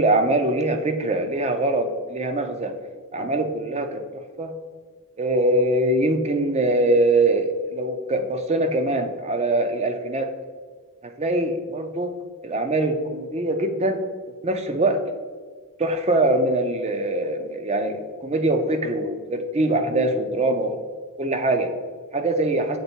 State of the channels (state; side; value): normal; both; correlation 0.19